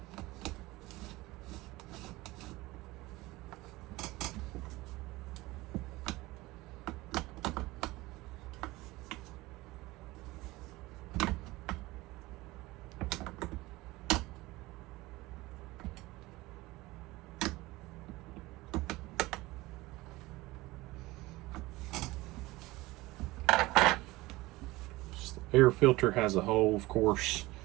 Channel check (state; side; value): quieter; left; 20.0 dB